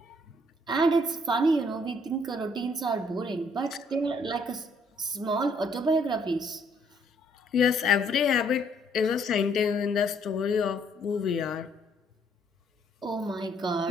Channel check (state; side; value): normal; both; correlation 0.66